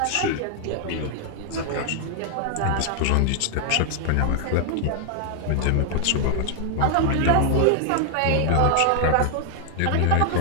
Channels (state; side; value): different; both; correlation 0.00